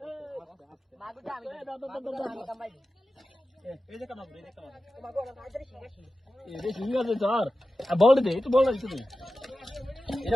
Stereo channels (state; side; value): normal; both; correlation 0.94